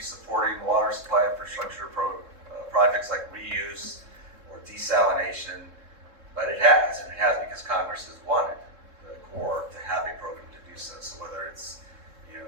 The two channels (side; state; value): left; late; 3.7 ms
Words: supporting water supply infrastructure projects like reuse or desalination, but it has, and it has because Congress has wanted the Corps to have a program to do so. So whether it's, a